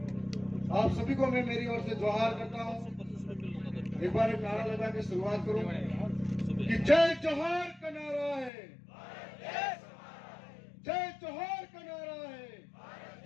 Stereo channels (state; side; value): drops out; right; at 8.5 s